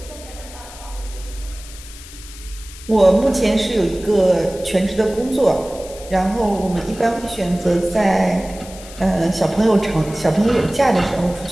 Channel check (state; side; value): noise; left; hiss, 17 dB below the sound